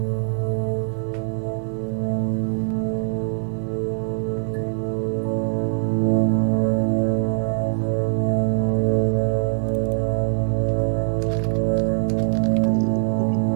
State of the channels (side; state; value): left; silent; 58 dB below the other